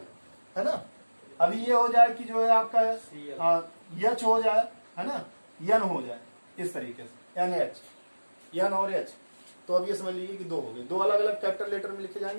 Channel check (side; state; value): both; inverted; correlation -1.00